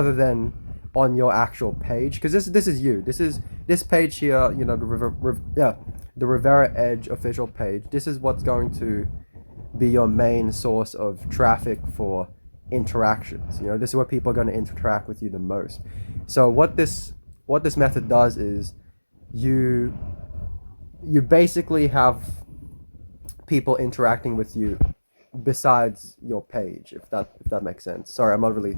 than on your actual page, because this is you. This page here, the Rivera Edge official page. This is what's going to be your main source of traffic for interactions. This is where people are going to interact with you the most. So what this method does is you you basically have people interacting with you besides your page, if that makes sense. Sorry, I'm not really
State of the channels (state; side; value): inverted; both; correlation -1.00